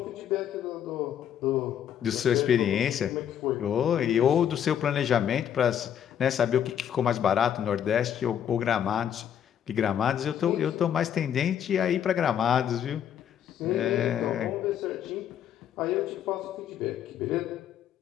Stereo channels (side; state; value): right; quieter; 9.4 dB